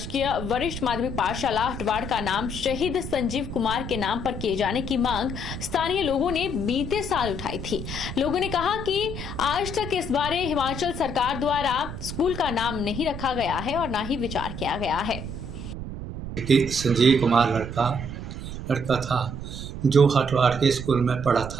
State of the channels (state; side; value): noise; right; rumble, 8 dB below the sound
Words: वरिष्ठ माध्यमिक पाठशाला हटवाड़ का नाम शहीद संजीव कुमार के नाम पर किए जाने की मांग स्थानीय लोगों ने बीते साल उठाई थी। लोगों ने कहा कि आज तक इस बारे हिमाचल सरकार द्वारा स्कूल का नाम नहीं रखा गया है और न ही विचार किया गया है। संजीव कुमार लड़का था जो हटवाड़ के स्कूल में पढ़ा